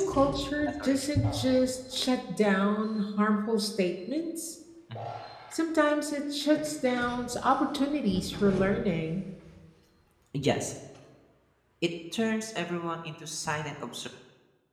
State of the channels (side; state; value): both; identical; correlation 1.00